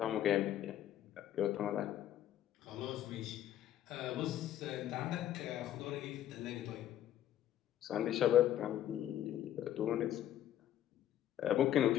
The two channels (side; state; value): right; quieter; 11.6 dB